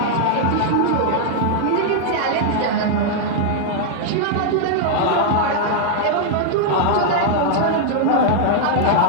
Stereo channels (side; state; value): both; different; correlation -0.01